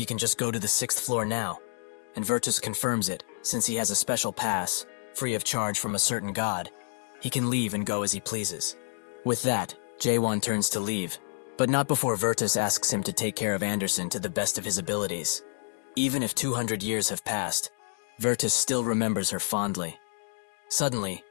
can just go to the 6th floor now, and Virtus confirms it, since he has a special pass, free of charge from a certain god. He can leave and go as he pleases. With that, Jae-won turns to leave, but not before Virtus asks him to take care of Anderson to the best of his abilities. Even if 200 years have passed, Virtus still remembers her fondly. Suddenly,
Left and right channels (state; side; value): silent; right; 59 dB below the other